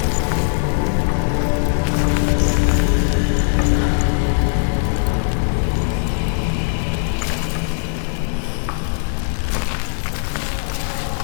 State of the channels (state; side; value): silent; right; 66 dB below the other